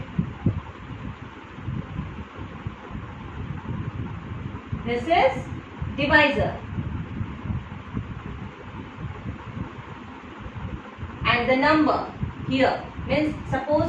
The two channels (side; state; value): both; identical; correlation 1.00